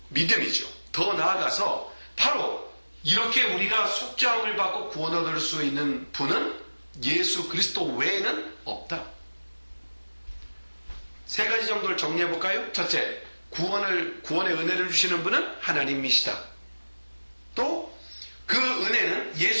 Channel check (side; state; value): both; inverted; correlation -1.00